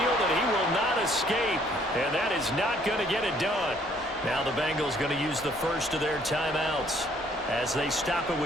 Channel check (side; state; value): both; normal; correlation 0.63